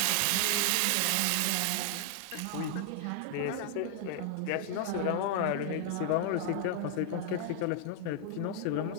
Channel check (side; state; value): both; different; correlation 0.00